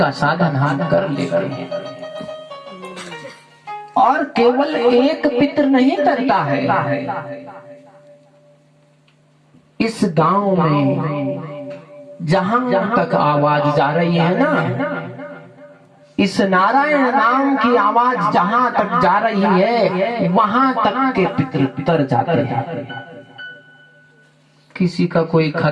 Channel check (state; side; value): identical; both; correlation 1.00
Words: साधन हम कर लेंगे। और केवल एक पितृ नहीं करता है, इस गांव में जहां तक आवाज जा रही है ना, इस नारायण नाम की आवाज जहां तक जा रही है वहां तक के पितृ तर जाते हैं। किसी का कोई